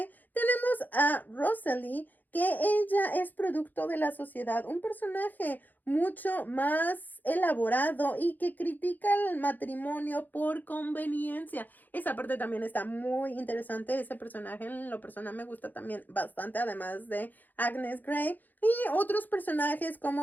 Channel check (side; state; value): right; late; 0.085 ms